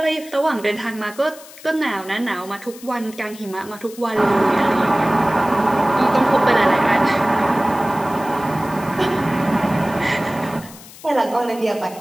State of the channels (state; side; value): noise; left; hiss, 19 dB below the sound